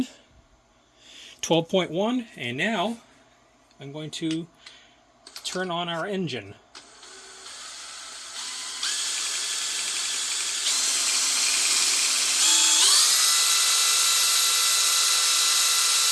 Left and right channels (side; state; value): both; identical; correlation 1.00